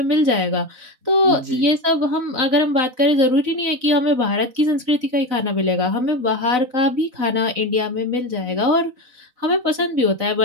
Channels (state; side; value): late; left; 4.0 ms